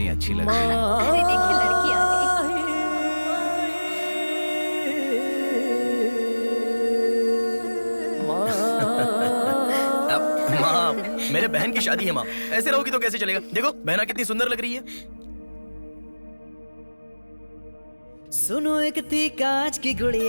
अच्छी लग रही है। अरे देखिए, लड़की आ गई। माँ, मेरे बहन की शादी है माँ, ऐसे रहोगी तो कैसे चलेगा? देखो बहना कितनी सुंदर लग रही है। सुनो एक थी कांच की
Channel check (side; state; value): both; inverted; correlation -1.00